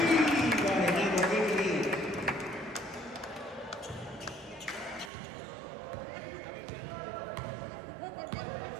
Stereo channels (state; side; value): drops out; left; at 5.1 s